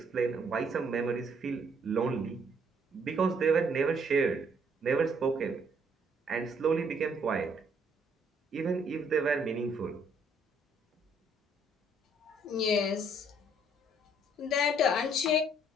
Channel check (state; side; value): normal; both; correlation 0.66